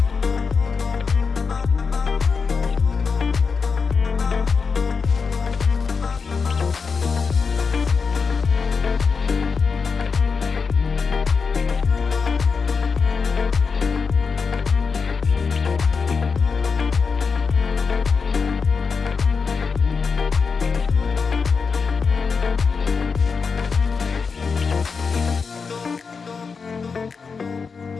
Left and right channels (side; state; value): right; quieter; 5.2 dB